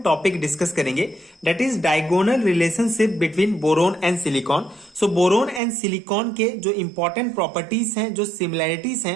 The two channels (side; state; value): left; drops out; at 5.6 s